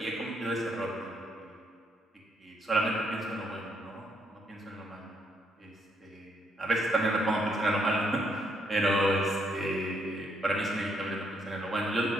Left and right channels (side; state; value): both; normal; correlation 0.73